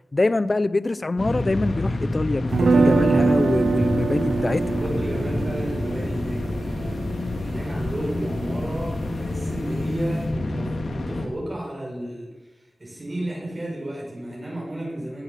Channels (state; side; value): normal; both; correlation 0.93